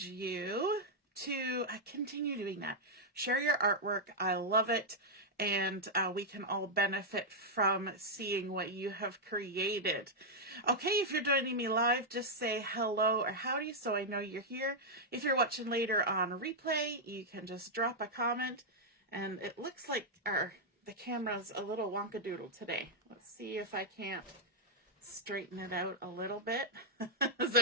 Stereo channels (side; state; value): both; normal; correlation -0.04